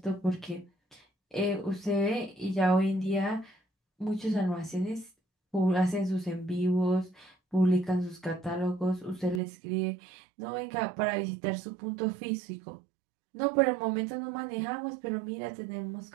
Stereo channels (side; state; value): left; drops out; at 9.4 s